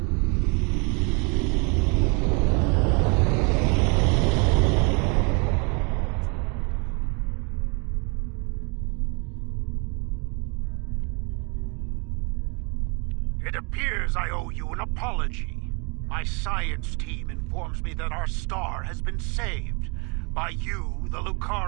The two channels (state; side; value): quieter; left; 32.8 dB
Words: It appears I owe you an apology. My science team informs me that our star has been saved by you, the